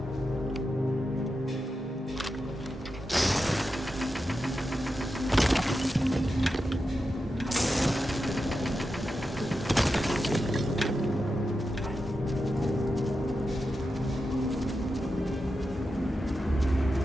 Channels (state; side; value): normal; both; correlation 0.89